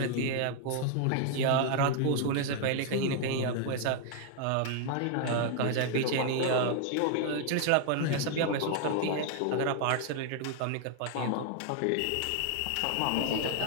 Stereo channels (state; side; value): different; both; correlation 0.00